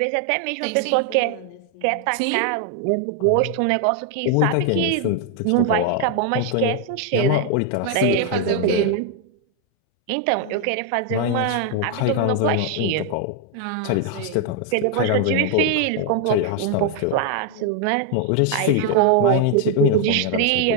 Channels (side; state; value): both; different; correlation 0.00